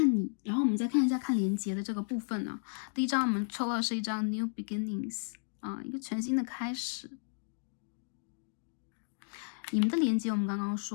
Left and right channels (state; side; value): silent; right; digital silence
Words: 你，然后我们再看一下看连接的这个部分呢。第一张我们抽到的是一张 New Beginnings 啊，一个全新的开始。你们的连接我们刚刚